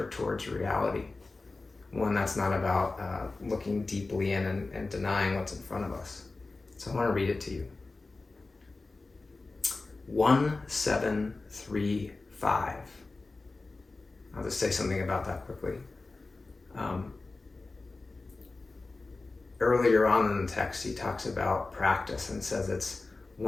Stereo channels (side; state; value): right; quieter; 3.5 dB